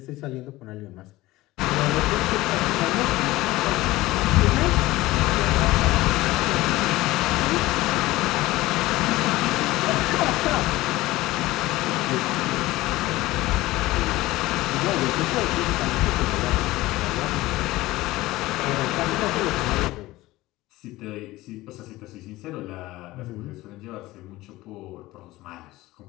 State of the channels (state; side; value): quieter; right; 18.3 dB